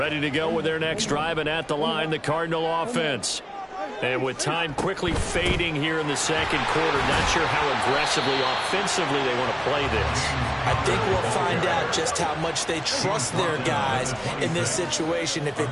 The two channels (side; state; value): both; identical; correlation 1.00